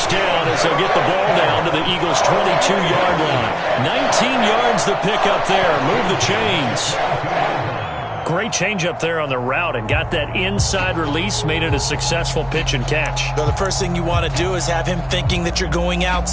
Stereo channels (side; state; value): both; identical; correlation 1.00